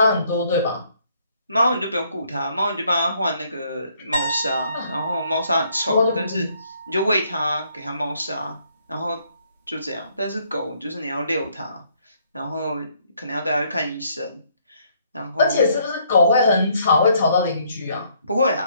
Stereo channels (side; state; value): both; inverted; correlation -0.68